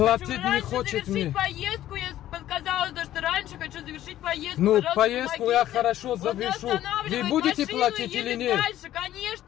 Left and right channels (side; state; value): right; quieter; 13.0 dB